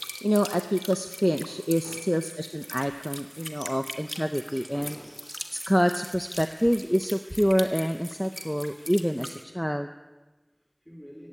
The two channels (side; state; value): both; identical; correlation 1.00